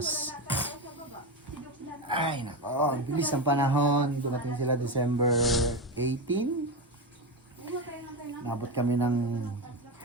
Ay nako, ang bilis ng panahon. Dumating sila December 18. Nabot kami ng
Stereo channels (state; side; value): normal; both; correlation 0.16